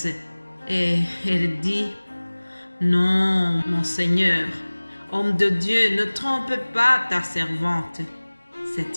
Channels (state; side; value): inverted; both; correlation -1.00